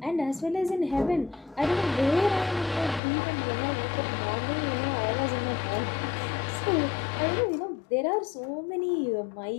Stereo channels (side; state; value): right; drops out; at 3.0 s